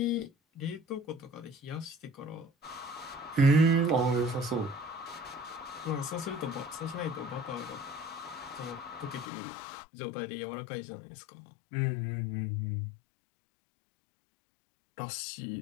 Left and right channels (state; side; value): drops out; right; at 9.2 s